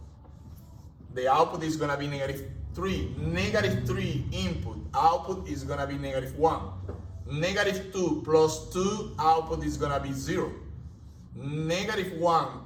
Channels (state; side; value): identical; both; correlation 1.00